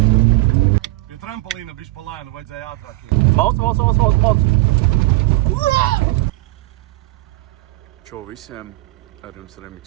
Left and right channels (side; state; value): left; quieter; 19.3 dB